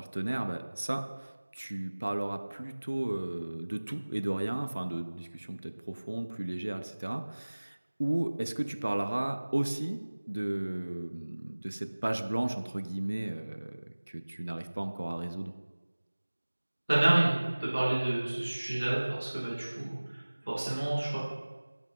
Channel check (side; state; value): both; inverted; correlation -1.00